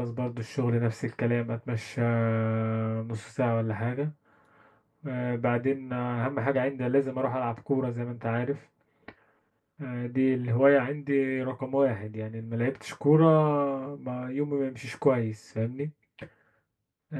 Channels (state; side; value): identical; both; correlation 1.00